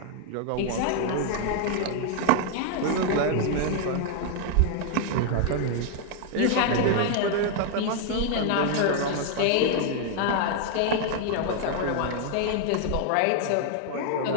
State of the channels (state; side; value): different; both; correlation 0.00